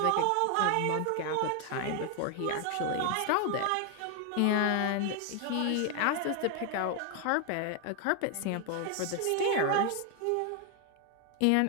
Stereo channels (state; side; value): different; both; correlation 0.00